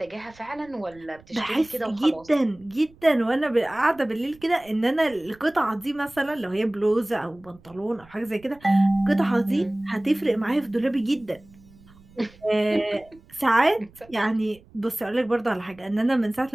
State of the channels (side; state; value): right; noise; rumble, 26 dB below the sound